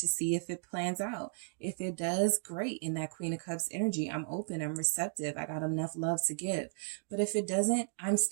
see if it plans out. If it does, great. In that Queen of Cups energy, I'm open, I'm receptive. I got enough love to give. But if it doesn't, I'm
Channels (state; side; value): silent; left; digital silence